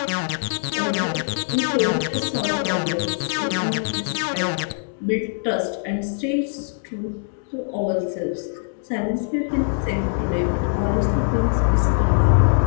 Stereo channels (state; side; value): silent; right; 64 dB below the other